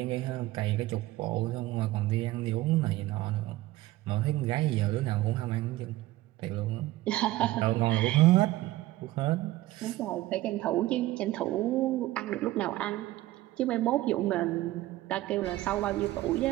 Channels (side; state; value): left; quieter; 16.9 dB